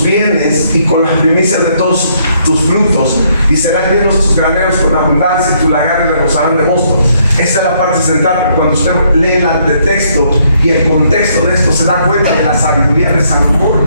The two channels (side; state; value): both; inverted; correlation -0.70